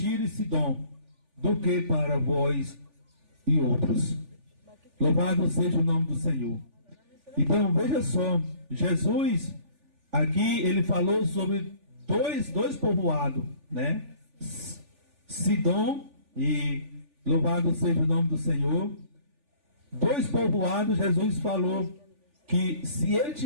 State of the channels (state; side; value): late; left; 3.4 ms